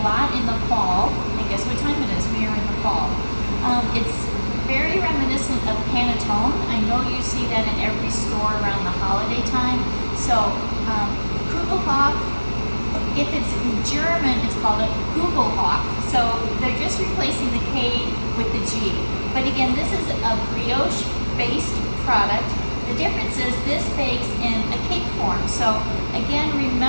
lot in the fall. And guess what time it is? We are in the fall. It's very reminiscent of panettone. I know you see that in every store around the holiday time. So Kugelhopf, if it's in German, it's called a Kugelhopf. So they're just replacing the K with the G. But again, this is a brioche-based product. The difference is this bakes in a cake form. So again,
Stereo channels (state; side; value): inverted; both; correlation -1.00